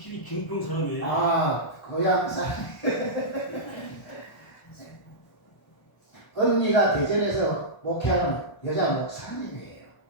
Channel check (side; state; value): right; late; 1.1 ms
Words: 김평 사람이에요. 아, 고향 사람. 언니가 대전에서 목회하는 여자 목사님이에요.